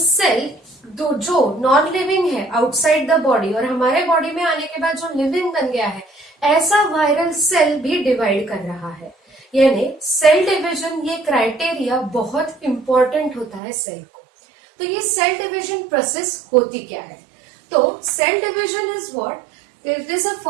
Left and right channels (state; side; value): drops out; left; at 13.6 s